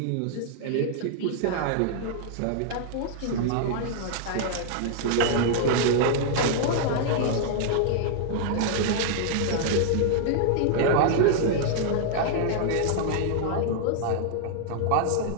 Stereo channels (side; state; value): both; different; correlation -0.01